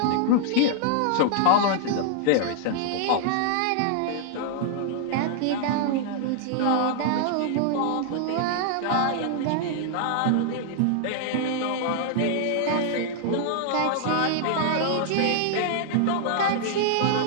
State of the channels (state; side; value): different; both; correlation -0.01